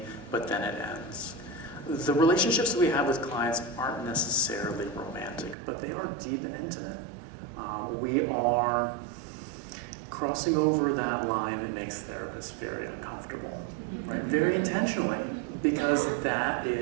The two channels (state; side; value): drops out; left; at 5.6 s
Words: but then it ends. The relationships that we have with clients aren't necessarily romantic, but they are deep and intimate. We are crossing over that line that makes therapists very uncomfortable, right? Very intentionally, because that